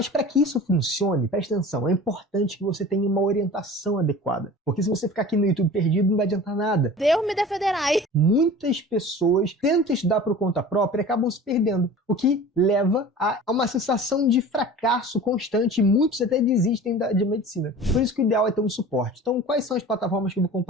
para que isso funcione, preste atenção, é importante que você tenha uma orientação adequada. Porque se você ficar aqui no YouTube perdido, não vai adiantar nada. Deus me defenderai. Muitas pessoas tentam estudar por conta própria e acabam se perdendo, o que leva a uma sensação de fracasso constante, e muitos até desistem de medicina. Por isso que o ideal é ter um suporte. Então, quais são as plataformas que eu vou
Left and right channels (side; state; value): both; normal; correlation 0.40